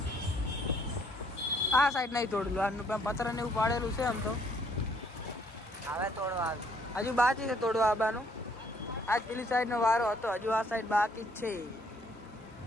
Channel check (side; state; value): both; normal; correlation 0.65